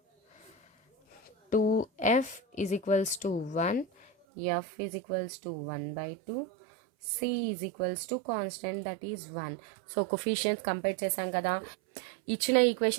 2f is equals to 1, f is equals to 1 by 2, c is equals to constant that is 1. So coefficients compare చేసాం కదా. ఇచ్చిన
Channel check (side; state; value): left; drops out; at 4.1 s